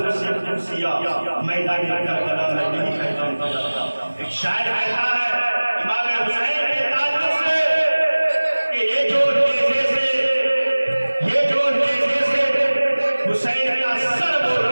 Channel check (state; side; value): inverted; both; correlation -1.00